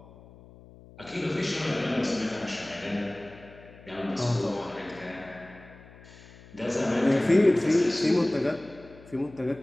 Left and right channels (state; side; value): noise; left; hum, 21 dB below the sound